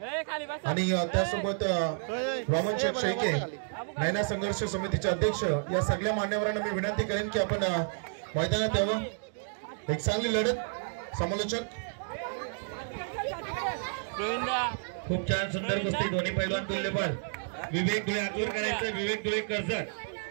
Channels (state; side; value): silent; left; digital silence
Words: आणि त्यासोबत वामन शेख शेळके नैना संघर्ष समितीचे अध्यक्ष या सगळ्या मान्यवरांना मी विनंती करेन की आपण मैदानात यावं. एक चांगली लढत. समालोचक खूप छान सुंदर कुस्ती. दोन्ही पैलवान तुल्यबल. विवेक धुळे आतूर करायचं. विवेक धुळे कर्जत.